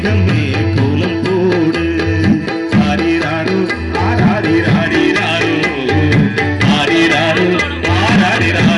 கோலம் போடு. ஆரிராரு ஆராரிராரிராரு ஆரிராரு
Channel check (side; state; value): both; identical; correlation 1.00